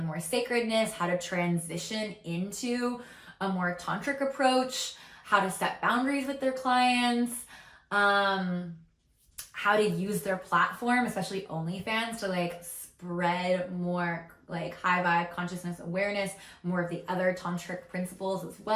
more sacredness, how to transition into a more tantric approach, how to set boundaries with their clients, how to use their platform, especially OnlyFans, to like spread more like high vibe consciousness awareness, more of the other tantric principles as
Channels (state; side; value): identical; both; correlation 1.00